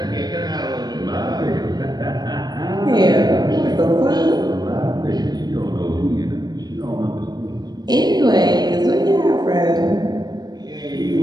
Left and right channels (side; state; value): left; late; 0.19 ms